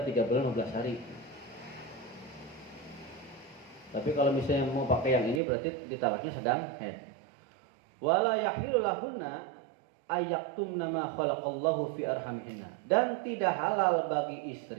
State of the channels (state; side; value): drops out; left; at 5.4 s